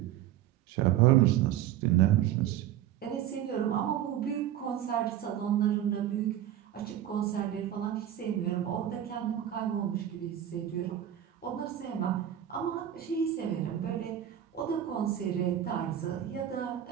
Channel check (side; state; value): left; quieter; 11.4 dB